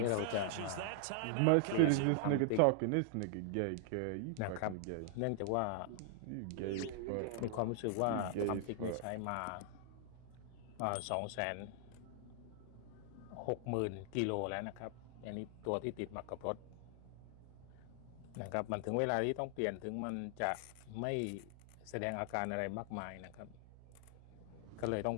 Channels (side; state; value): both; different; correlation 0.00